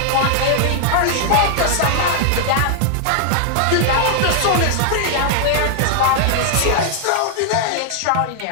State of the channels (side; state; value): both; different; correlation 0.00